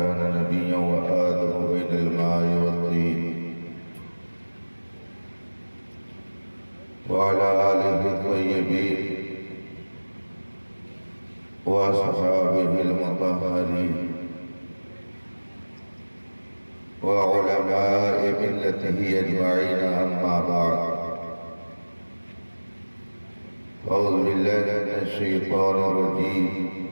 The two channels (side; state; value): both; inverted; correlation -1.00